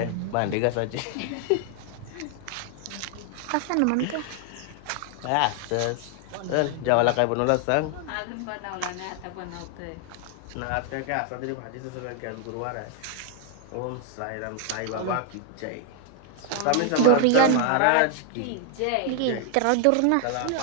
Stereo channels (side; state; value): both; different; correlation 0.00